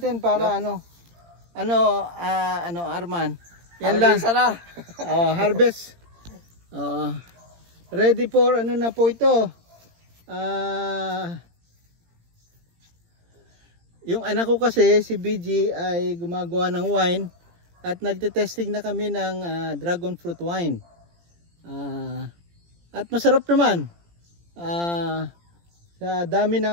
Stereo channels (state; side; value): late; left; 17 ms